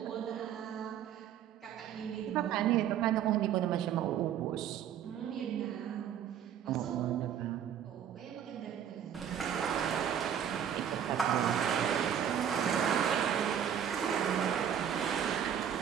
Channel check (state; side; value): quieter; left; 9.3 dB